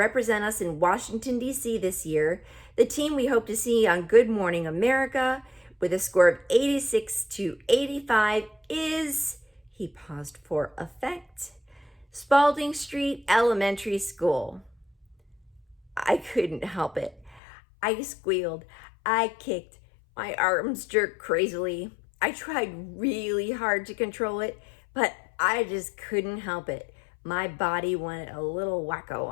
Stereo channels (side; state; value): right; drops out; at 17.4 s